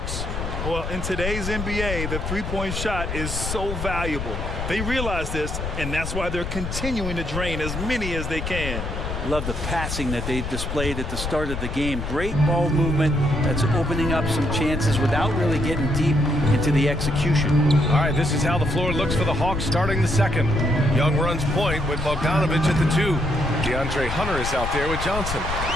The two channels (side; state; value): left; noise; rumble, 5 dB below the sound